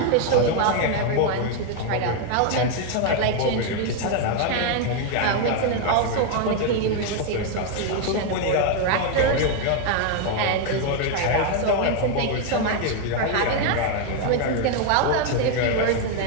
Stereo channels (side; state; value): both; different; correlation 0.01